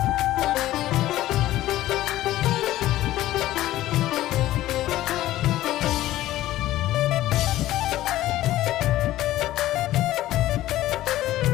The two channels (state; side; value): quieter; right; 15.0 dB